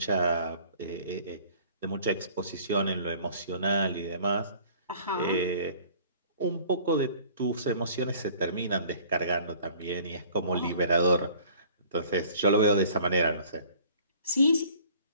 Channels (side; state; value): both; inverted; correlation -0.52